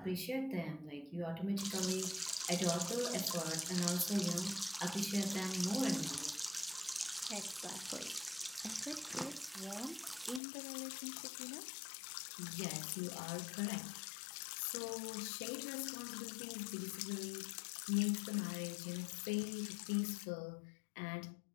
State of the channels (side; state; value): right; drops out; at 10.4 s